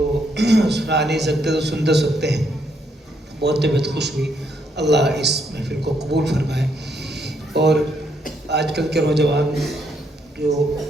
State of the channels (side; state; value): both; normal; correlation 0.74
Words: سنا نہیں سکتے تو سن تو سکتے ہیں۔ بہت طبیعت خوش ہوئی، اللہ اس محفل کو قبول فرمائے۔ اور آج کل کے نوجوان جو